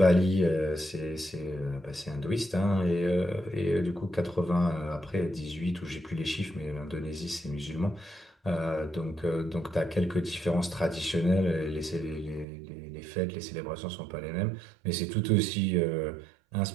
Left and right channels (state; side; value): drops out; left; at 12.5 s